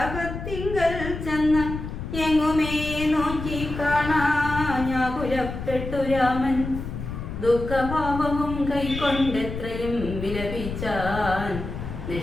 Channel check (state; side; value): noise; left; rumble, 7 dB below the sound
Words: ചെന്ന് എങ്ങുമേ നോക്കി കാണാഞ്ഞാകുലപ്പെട്ടു രാമൻ. ദുഃഖഭാവവും കൈക്കൊണ്ടെത്രയും വിലപിച്ചാൻ.